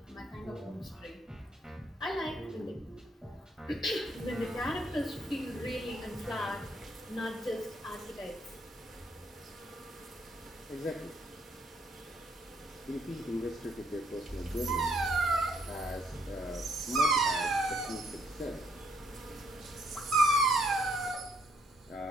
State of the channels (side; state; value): both; normal; correlation 0.70